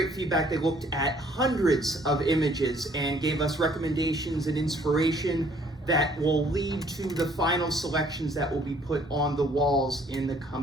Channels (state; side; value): normal; both; correlation 0.61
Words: feedback. They looked at hundreds of images and gave us recommendations and inspiration that will lead to the final selections that will be put on the walls in the